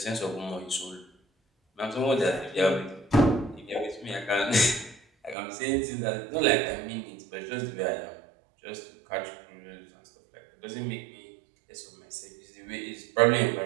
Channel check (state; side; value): drops out; left; at 5.4 s